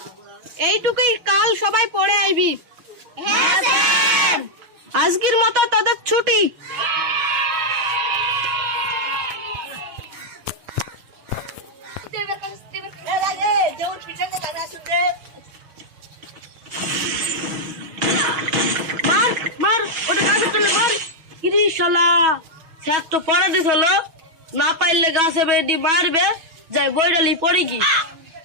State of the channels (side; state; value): left; late; 6.1 ms